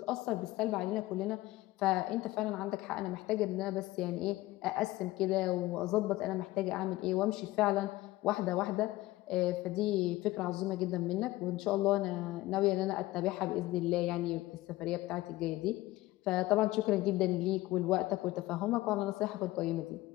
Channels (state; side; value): quieter; right; 17.8 dB